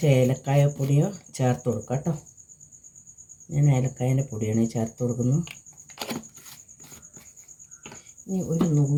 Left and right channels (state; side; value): identical; both; correlation 1.00